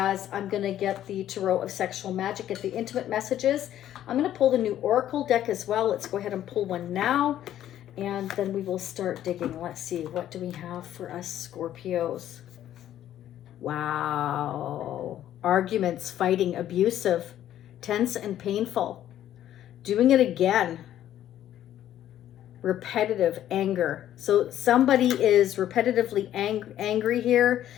I'm going to get the Tarot of Sexual Magic at the intimate messages. I'm going to pull the new Oracle deck as well. Let's go ahead and pull one now, and then we will start digging. Let's see, what do we have for us Scorpios? Wow. Arguments, fighting, abusive, tense and painful. Doing it again. Repetitive anger. So somebody is repetitively angry here.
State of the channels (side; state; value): right; quieter; 11.8 dB